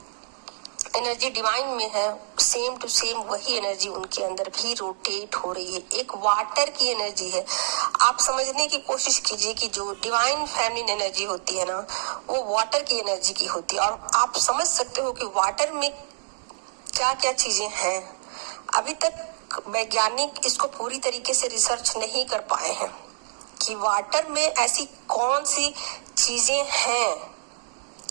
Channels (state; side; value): silent; left; digital silence